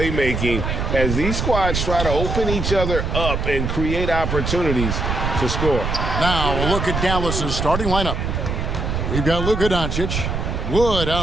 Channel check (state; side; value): noise; right; rumble, 2 dB below the sound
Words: as these squads try to open each other up and create opportunities to score. Now a look at Dallas's starting lineup. We've got Luka Doncic, Wood